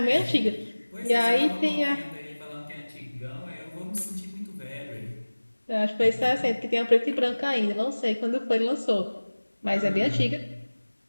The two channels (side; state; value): both; inverted; correlation -1.00